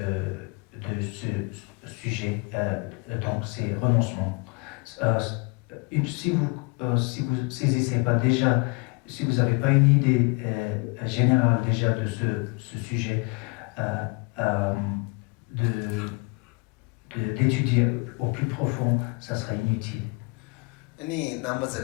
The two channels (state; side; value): quieter; right; 30.8 dB